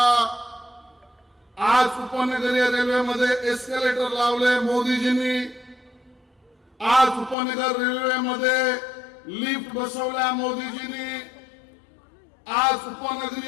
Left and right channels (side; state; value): right; drops out; at 7.4 s